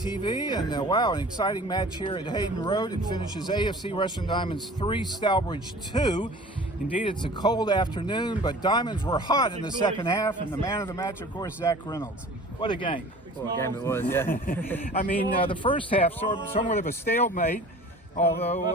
and wow, an exciting match here at Hayden Road. It finishes AFC Rushden Diamonds 3, Stourbridge 2. Indeed, it's a cold afternoon, but Diamonds were hot in the second half, and the man of the match, of course, Zack Reynolds. What a game. What a game it was, yeah. I mean, the first half, somewhat of a stalemate,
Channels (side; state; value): both; normal; correlation 0.44